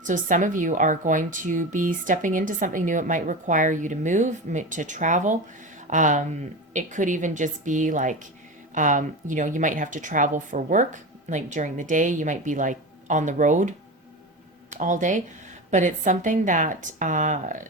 So some of you are going to be stepping into something new. It might require you to move, to travel. It could even just be you might have to travel for work, during the day. You might be on the road all day. But it's something that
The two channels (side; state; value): both; normal; correlation 0.25